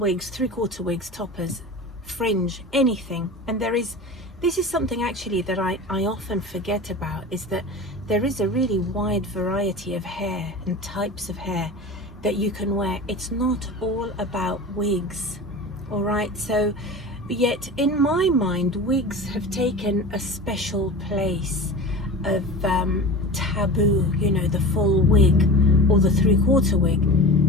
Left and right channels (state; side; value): normal; both; correlation 0.33